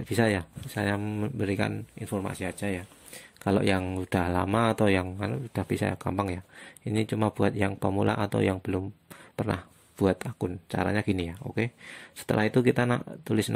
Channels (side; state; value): both; identical; correlation 1.00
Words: bisa ya, saya memberikan informasi aja ya. Kalau yang udah lama atau yang udah bisa gampang ya. Ini cuma buat yang pemula atau yang belum pernah buat akun. Caranya gini ya. Oke. Setelah itu kita tulis